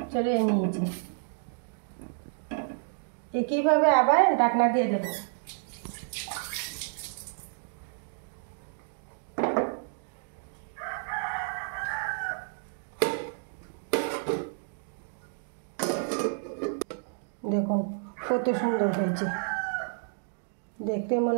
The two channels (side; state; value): left; silent; digital silence